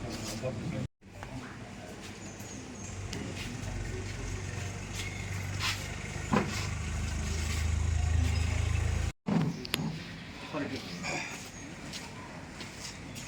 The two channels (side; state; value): both; identical; correlation 1.00